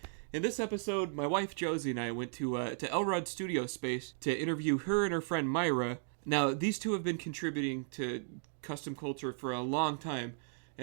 In this episode, my wife Josie and I went to Elrod studio space to interview her and her friend Mayra. Now, these two have been contributing to custom culture for a long time,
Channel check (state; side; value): silent; left; digital silence